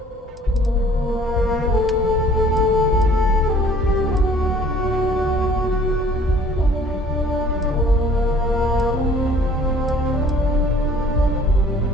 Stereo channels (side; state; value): both; normal; correlation 0.53